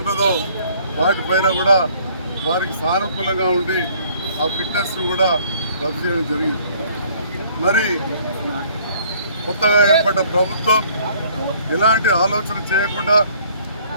వాటిపైన కూడా వారికి సానుకూలంగా ఉండి ఆ ఫిట్నెస్ను కూడా రద్దు చేయడం జరిగింది. మరి కొత్తగా ఏర్పడ్డ ప్రభుత్వం ఎలాంటి ఆలోచన చేయకుండా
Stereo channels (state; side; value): inverted; both; correlation -0.58